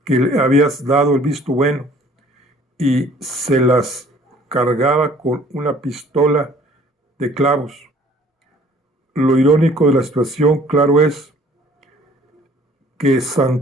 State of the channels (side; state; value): both; normal; correlation 0.55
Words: que le habías dado el visto bueno y se las cargaba con una pistola de clavos. Lo irónico de la situación, claro, es que